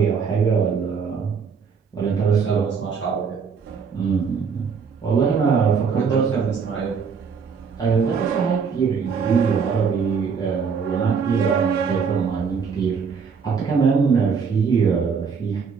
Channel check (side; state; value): left; quieter; 5.9 dB